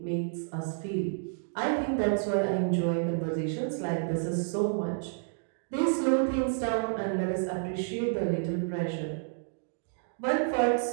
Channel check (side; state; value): left; silent; digital silence